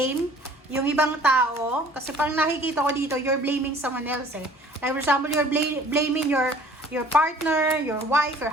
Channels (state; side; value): normal; both; correlation 0.52